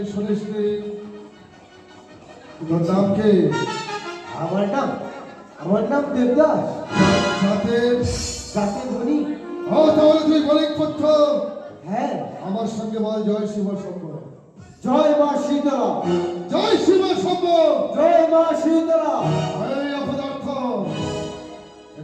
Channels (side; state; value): both; identical; correlation 1.00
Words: শুনিসনি? তোর নাম কি? আমার নাম দেবদাস। জাতের? জাতের ধনী। ও তাহলে তুই বণিক পুত্র। হ্যাঁ। আমার সঙ্গে বল জয় শিব শম্ভ। জয় মা শীতলা। জয় শিব শম্ভ। জয় মা শীতলা। এই অপদার্থ,